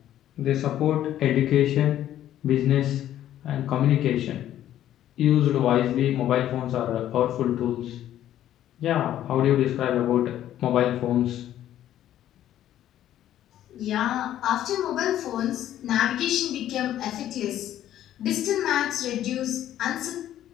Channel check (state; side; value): quieter; right; 12.0 dB